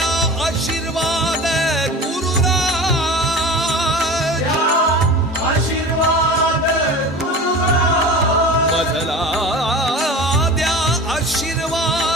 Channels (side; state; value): both; normal; correlation 0.36